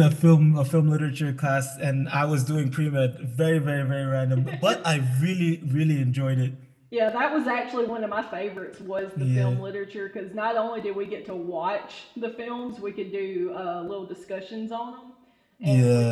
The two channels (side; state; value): both; identical; correlation 1.00